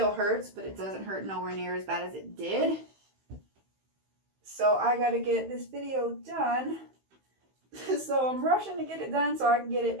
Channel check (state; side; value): late; left; 15 ms